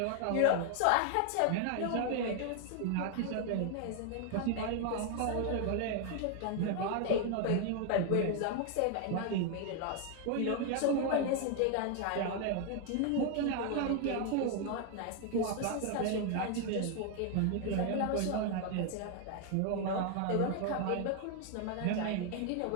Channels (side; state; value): both; different; correlation 0.00